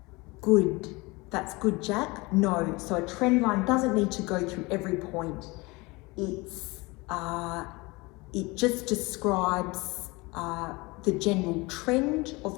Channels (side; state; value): right; quieter; 24.3 dB